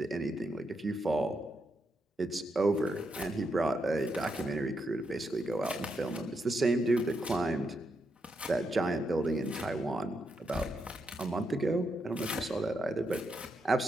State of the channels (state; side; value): normal; both; correlation 0.82